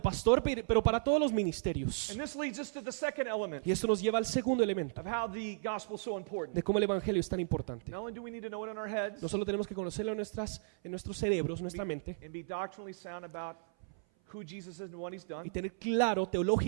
pastor, pero para todos los ministerios. And this leads us to the second element Y esto nos lleva al segundo elemento of how the gospel is so important. de cómo el evangelio es tan importante. Not only do we need to know it in our heads No solo tenemos que conocerlo en nuestros cerebros, nuestra mente, and be doctrinally sound about who Jesus is and what he's y done, tener claro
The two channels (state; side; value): silent; left; 54 dB below the other